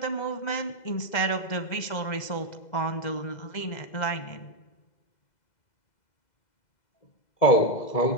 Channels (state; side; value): late; right; 2.0 ms